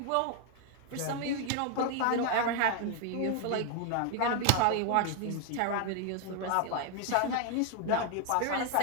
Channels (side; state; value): both; different; correlation 0.00